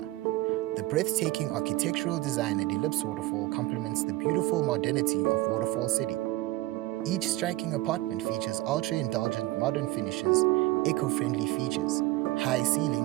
The breathtaking architectural design at Ellipse Waterfall complements the beautiful modernity of Waterfall City. Each striking apartment features ultra-indulgent modern finishes, eco-friendly features, high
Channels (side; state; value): left; quieter; 18.3 dB